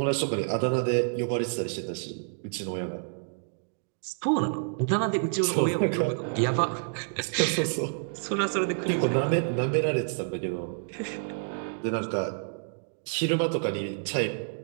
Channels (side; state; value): left; silent; digital silence